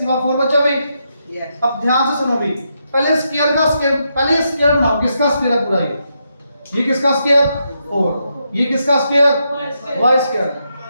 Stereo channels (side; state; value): both; inverted; correlation -0.82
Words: पावर 4 बचा भाई। Yes. अब ध्यान से सुनो भाई, पहले स्क्वायर का स्क्वायर, पहले स्क्वायर बनाओ, किसका स्क्वायर है पूरा ये किसका स्क्वायर 4, ये किसका स्क्वायर y स्क्वायर,